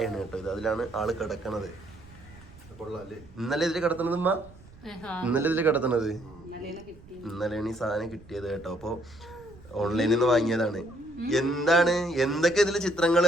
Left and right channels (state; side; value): noise; right; rumble, 22 dB below the sound